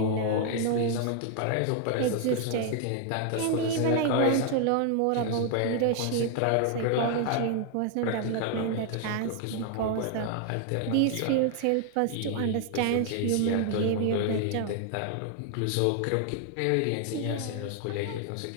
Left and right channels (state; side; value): different; both; correlation 0.00